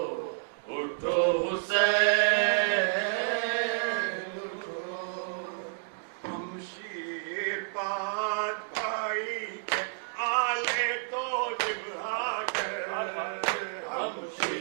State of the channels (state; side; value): silent; left; digital silence